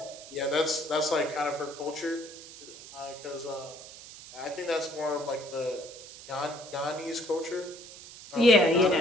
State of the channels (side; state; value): right; noise; hiss, 16 dB below the sound